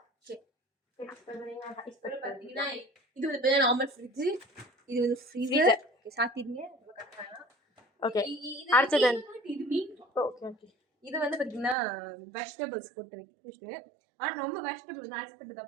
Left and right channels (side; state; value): left; drops out; at 11.8 s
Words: ஓகே, பார்த்தீங்கன்னா இது வந்து நார்மல் ஃப்ரிட்ஜு, இது வந்து ஃப்ரீசர். ஓகே, சாத்திடுங்க. ஓகே, அடுத்தது இது மீன். ஓகே ஓகே, இது வந்து பார்த்தீங்கன்னா வெஜிடபிள்ஸ் போட்டு வைக்கிட்டு. ஆனால் ரொம்ப வெஜிடபிள்ஸ் வந்து ஐஸ்பெட்டு